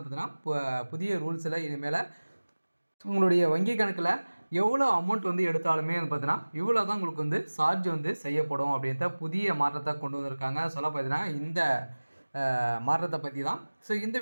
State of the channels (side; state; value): both; inverted; correlation -1.00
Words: புதிய ரூல்ஸில் இனிமேல் உங்களுடைய வங்கி கணக்கில் எவ்வளோ அமௌண்ட் எடுத்தாலுமே பார்த்தீங்கன்னா இவ்வளோ தான் உங்களுக்கு சார்ஜ் செய்யப்படும் அப்படின்ற புதிய மாற்றத்தை கொண்டு வந்திருக்காங்க. சொல்ல பார்த்தீங்கன்னா இந்த மாற்றத்தை பற்றி தான் இந்த